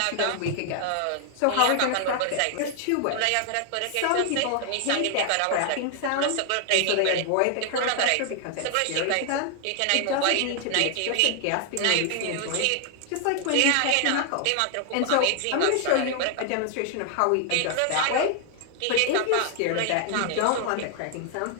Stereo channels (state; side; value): different; both; correlation 0.00